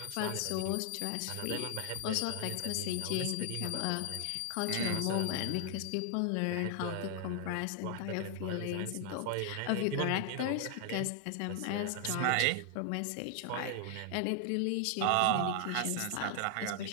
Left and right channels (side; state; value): both; different; correlation 0.00